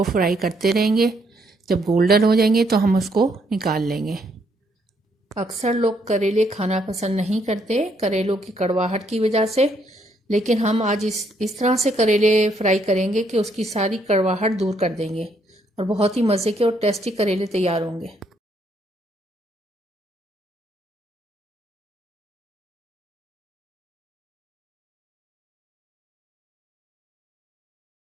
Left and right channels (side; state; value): both; normal; correlation 0.72